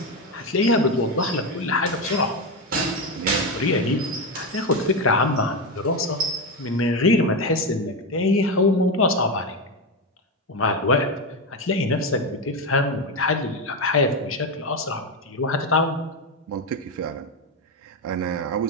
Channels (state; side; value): normal; both; correlation 0.12